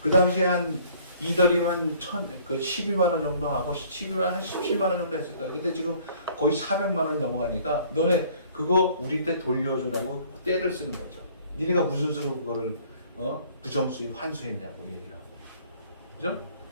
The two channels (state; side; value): inverted; both; correlation -0.56